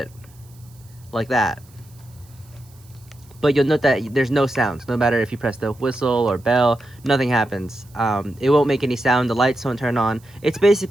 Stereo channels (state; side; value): noise; right; hiss, 28 dB below the sound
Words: like that. But you'll note that there's no sound. No matter if you press the whistle or bell, nothing happens. It won't make any sound. The lights don't turn on. It's